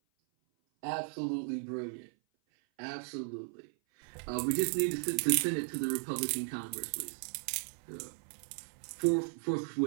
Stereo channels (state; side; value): silent; left; 54 dB below the other